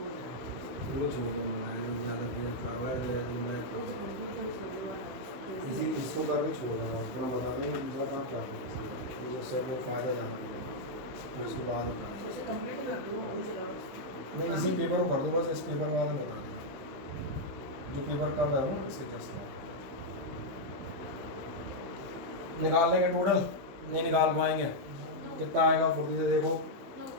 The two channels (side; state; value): left; late; 16 ms